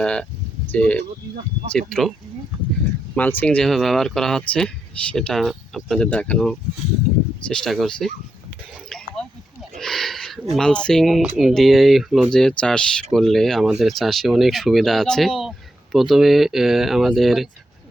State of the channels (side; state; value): both; normal; correlation 0.84